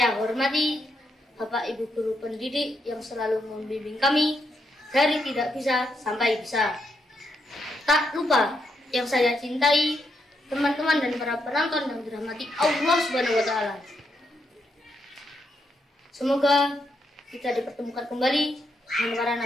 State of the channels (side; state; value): both; normal; correlation 0.80